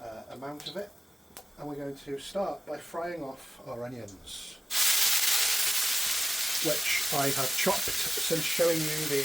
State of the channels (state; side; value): normal; both; correlation 0.97